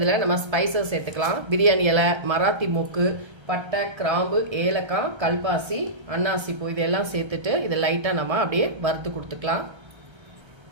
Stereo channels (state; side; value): late; left; 1.3 ms